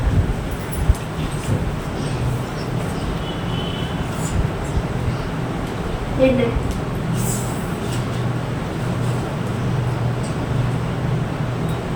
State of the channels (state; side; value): identical; both; correlation 1.00